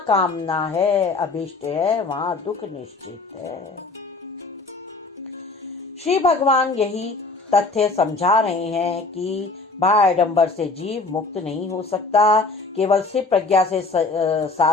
है, अभिष्ट है, वहां दुख निश्चित है। श्री भगवान यही तथ्य समझा रहे हैं कि बाह्याडंबर से जीव मुक्त नहीं हो सकता, केवल सिर्फ प्रज्ञा से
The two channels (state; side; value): quieter; right; 3.7 dB